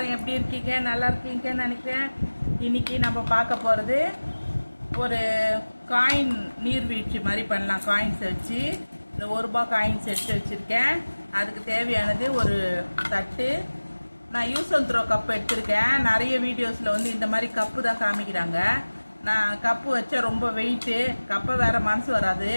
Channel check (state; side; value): inverted; both; correlation -1.00